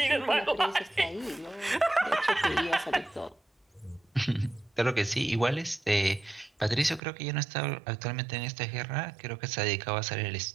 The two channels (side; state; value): left; drops out; at 7.0 s